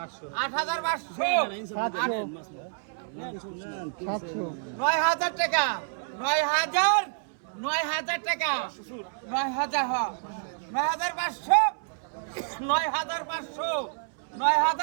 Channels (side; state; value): left; silent; 59 dB below the other